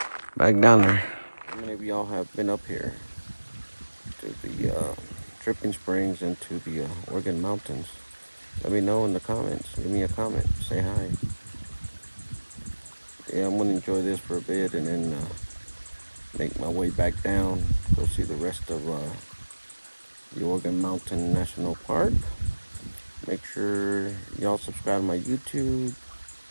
back down there. How many of y'all have been up here to the Dripping Springs and to the Oregon Mountains? Let me know in the comments. Give me a comment. Say hi. Yeah, I'm gonna enjoy this for a bit and then make my way back down. Go see the rest of the Oregon Mountain National Park. Make sure y'all subscribe to my YouTube,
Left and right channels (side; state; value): both; inverted; correlation -1.00